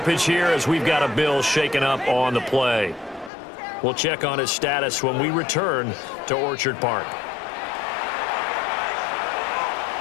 here as we've got a Bill shaken up on the play. We'll check on his status when we return to Orchard Park.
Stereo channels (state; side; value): drops out; right; at 3.3 s